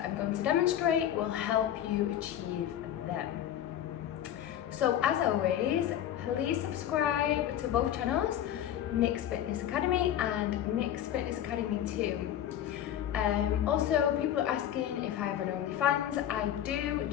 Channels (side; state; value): right; quieter; 11.0 dB